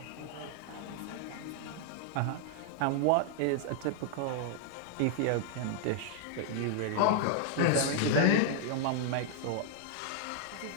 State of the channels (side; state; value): both; different; correlation -0.01